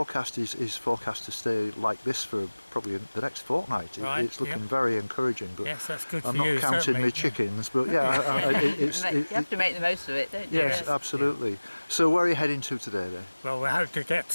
is forecast to stay like this for probably the next fortnight. Right, It's looking very encouraging. But Yes, that's good I'm for not you, counting certainly. my chickens, but yeah, You have to make the most of it, don't you? yes, absolutely. So where are you heading to today then? Well, we hope to get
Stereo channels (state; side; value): inverted; both; correlation -1.00